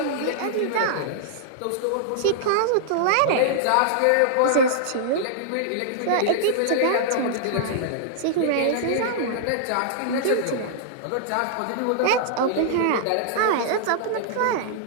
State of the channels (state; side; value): different; both; correlation -0.01